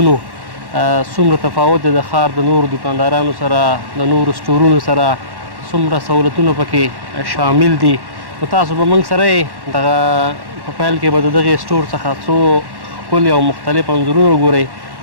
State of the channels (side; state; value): left; late; 1.1 ms